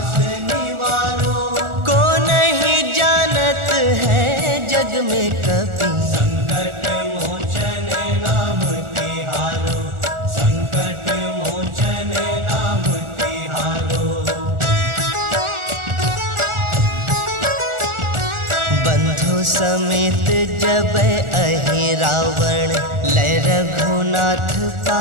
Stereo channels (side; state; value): left; late; 1.4 ms